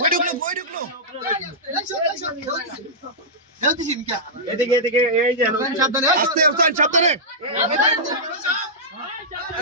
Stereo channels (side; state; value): both; normal; correlation -0.12